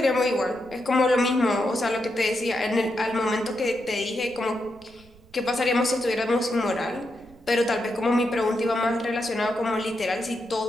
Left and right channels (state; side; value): noise; right; rumble, 26 dB below the sound